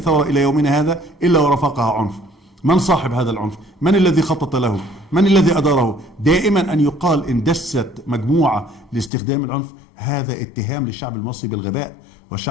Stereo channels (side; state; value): right; drops out; at 9.1 s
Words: إلى يومنا هذا إلا ورافقها عنف. من صاحب هذا العنف؟ من الذي خطط له؟ من الذي أداره؟ دائما أن يقال إن دست مجموعة لاستخدام العنف، هذا اتهام للشعب المصري بالغباء،